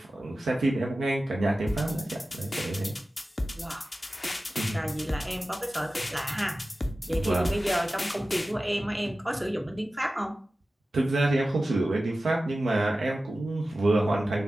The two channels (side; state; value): both; normal; correlation 0.95